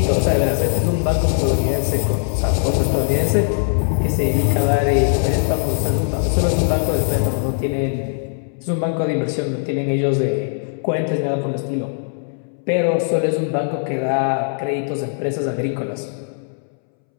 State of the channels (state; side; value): silent; right; 66 dB below the other